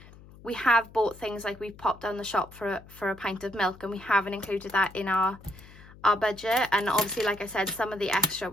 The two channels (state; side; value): noise; left; hum, 21 dB below the sound